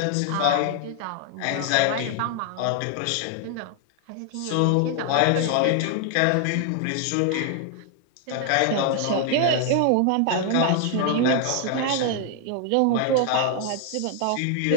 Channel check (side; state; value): both; different; correlation 0.00